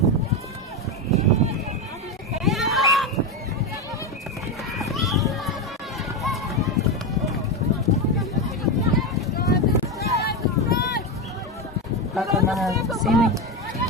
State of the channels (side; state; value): both; normal; correlation 0.12